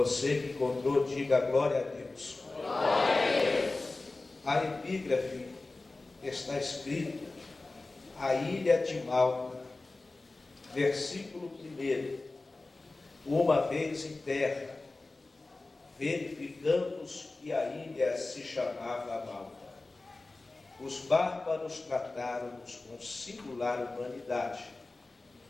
que encontrou, diga glória a Deus. Glória a Deus. A epígrafe está escrito: a ilha de Malta, versículo 1. Uma vez em terra, verificamos que a ilha se chamava Malta. Os bárbaros trataram-nos com singular humanidade,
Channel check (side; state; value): right; quieter; 3.3 dB